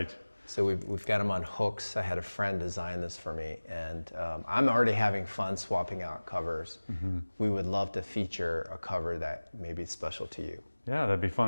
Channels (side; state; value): both; inverted; correlation -1.00